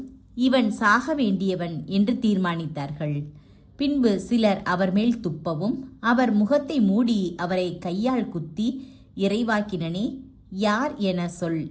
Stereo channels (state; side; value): identical; both; correlation 1.00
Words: இவன் சாக வேண்டியவன் என்று தீர்மானித்தார்கள். பின்பு சிலர் அவர் மேல் துப்பவும், அவர் முகத்தை மூடி அவரை கையால் குத்தி, இறைவாக்கினனே, யார் என சொல்